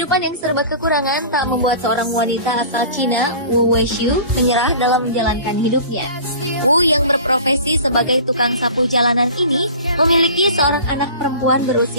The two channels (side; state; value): both; inverted; correlation -0.41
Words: yang serba kekurangan tak membuat seorang wanita asal Cina, Wu Weishu, menyerah dalam menjalankan hidupnya. Wu yang berprofesi sebagai tukang sapu jalanan ini memiliki seorang anak perempuan